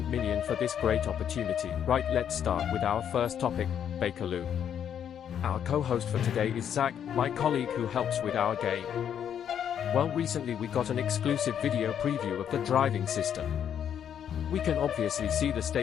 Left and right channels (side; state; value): right; quieter; 9.0 dB